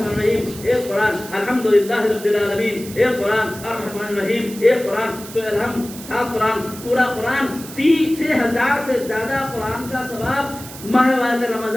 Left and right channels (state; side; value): noise; right; hiss, 14 dB below the sound